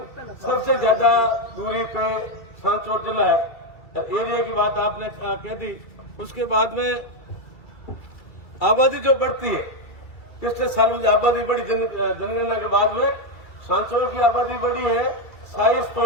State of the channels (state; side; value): late; right; 2.3 ms